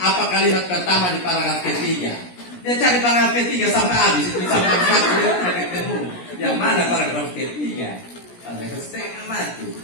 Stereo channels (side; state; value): right; late; 17 ms